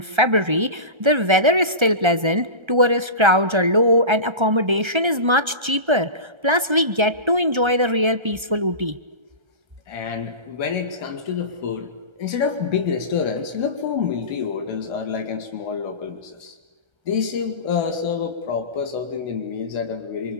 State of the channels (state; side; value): late; left; 1.3 ms